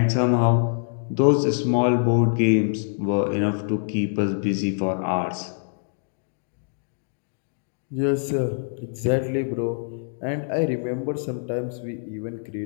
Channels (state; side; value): silent; right; digital silence